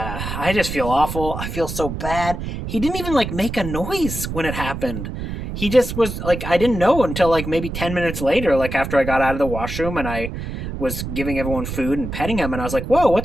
just feel awful. I feel so bad. He didn't even like make a noise when it happened. He just was like, I didn't know until like maybe 10 minutes later, like after I got out of the washroom and I was giving everyone food and petting him. And I was like, whoa,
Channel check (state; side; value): noise; right; rumble, 6 dB below the sound